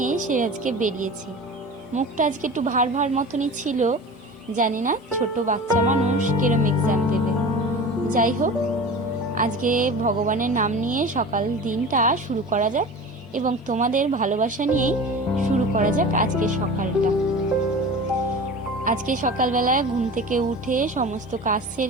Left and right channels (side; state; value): both; normal; correlation 0.35